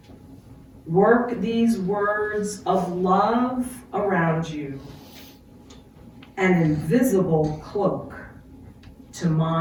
work these words of love around you, an invisible cloak to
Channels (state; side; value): identical; both; correlation 1.00